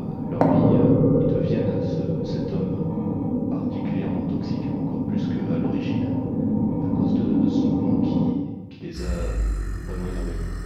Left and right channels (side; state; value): both; identical; correlation 1.00